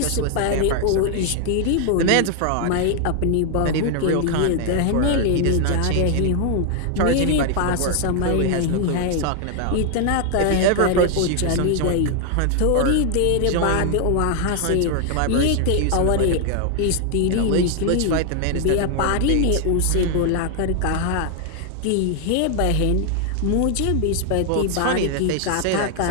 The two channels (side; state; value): both; different; correlation 0.00